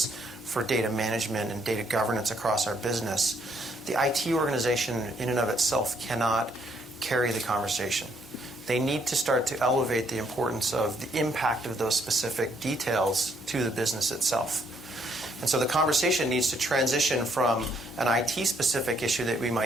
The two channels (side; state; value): both; normal; correlation 0.70